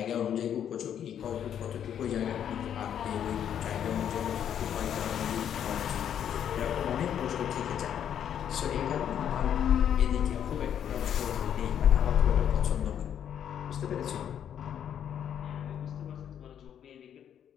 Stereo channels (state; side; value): quieter; right; 9.3 dB